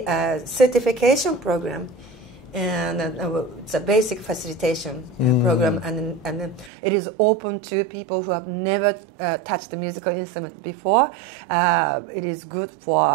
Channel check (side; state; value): left; drops out; at 6.7 s